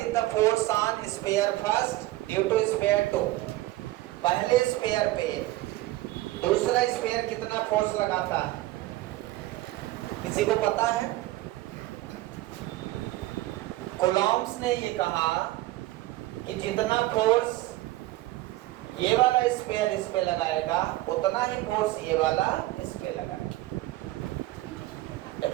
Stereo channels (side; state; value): left; quieter; 17.3 dB